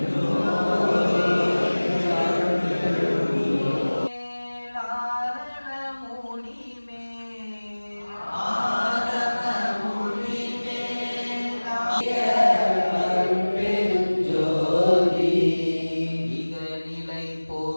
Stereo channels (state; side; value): inverted; both; correlation -1.00